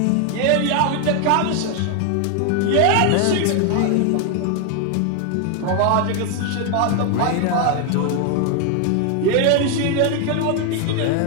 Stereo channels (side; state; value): both; different; correlation 0.01